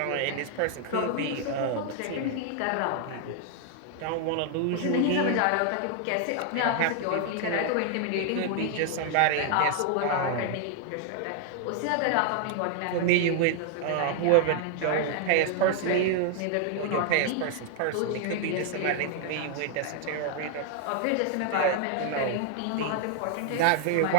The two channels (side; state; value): both; different; correlation 0.00